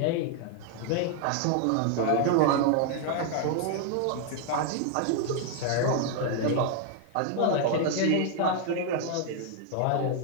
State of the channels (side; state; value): both; different; correlation 0.00